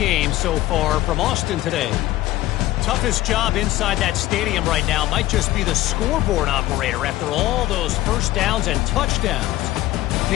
so far from Austin today. Toughest job inside that stadium right now might just be the scoreboard operator after all those first downs and touchdowns.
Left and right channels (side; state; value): right; quieter; 16.1 dB